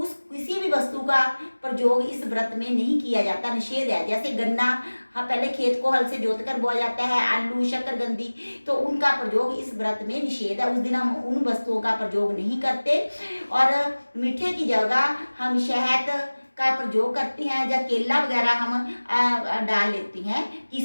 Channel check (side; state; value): both; inverted; correlation -1.00